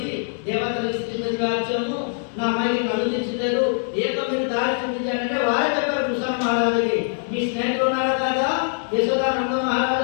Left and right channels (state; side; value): silent; right; digital silence